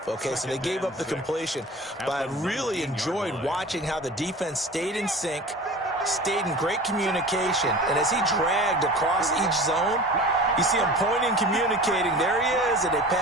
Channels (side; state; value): both; normal; correlation 0.38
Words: Okay, so they gave up the completion. But I really enjoyed watching how the defense stayed in sync, stayed in great communication. And as he dragged across each zone, you see him pointing, communicating. There he is, and they